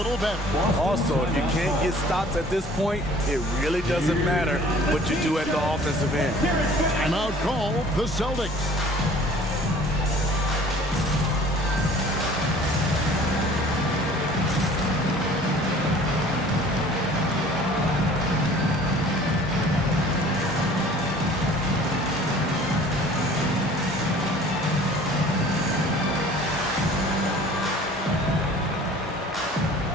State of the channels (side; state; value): both; normal; correlation 0.49